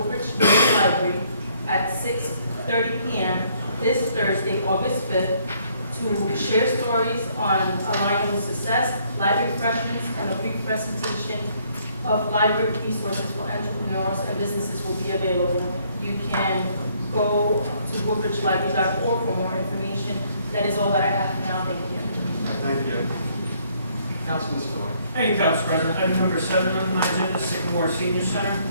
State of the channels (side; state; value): both; inverted; correlation -0.66